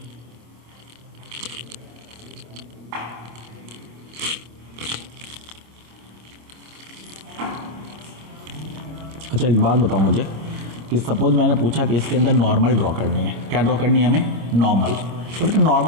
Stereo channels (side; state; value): left; late; 26 ms